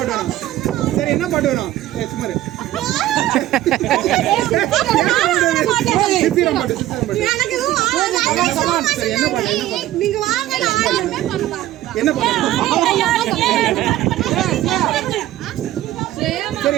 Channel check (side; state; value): left; quieter; 14.6 dB